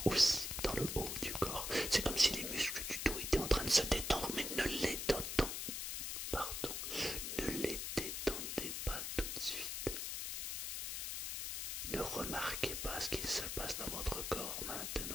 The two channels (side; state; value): left; noise; hiss, 3 dB below the sound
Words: aussi dans le haut du corps. C'est comme si les muscles du dos étaient en train de se détendre, mais ne les détendez pas tout de suite. Ne remarquez pas ce qu'il se passe dans votre corps